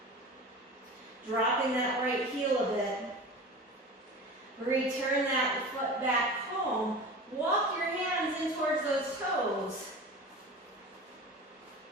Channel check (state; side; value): normal; both; correlation 0.34